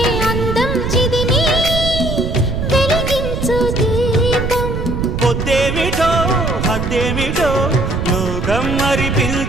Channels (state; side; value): noise; right; rumble, 3 dB below the sound